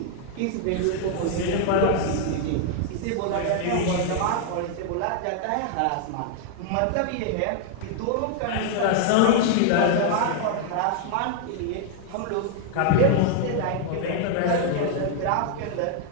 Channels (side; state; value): both; different; correlation 0.00